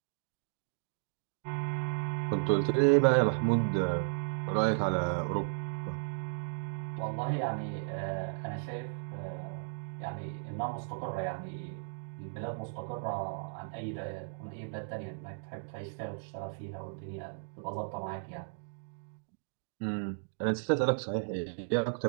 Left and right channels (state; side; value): silent; left; digital silence